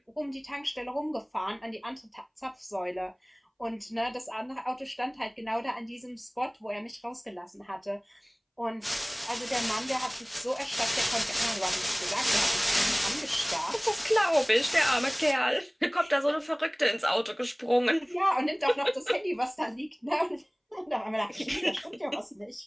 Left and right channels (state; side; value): identical; both; correlation 1.00